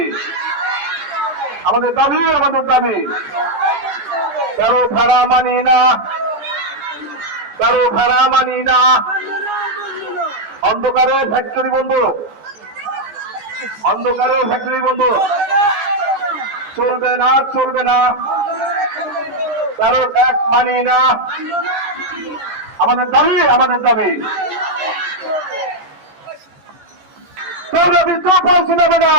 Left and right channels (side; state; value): left; late; 15 ms